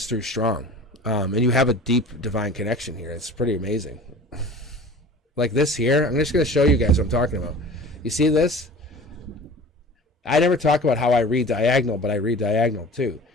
through strong. And you have a deep divine connection here. It's pretty amazing. Like this here, I'm just going to show you guys what I'm talking about. You see this? I never talk about how I read diagonal, but I read diagonal too.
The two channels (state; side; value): normal; both; correlation 0.40